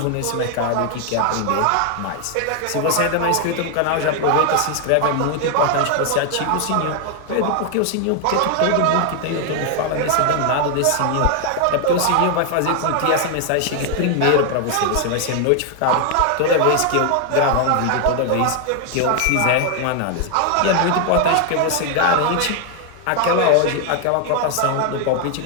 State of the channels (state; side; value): different; both; correlation 0.00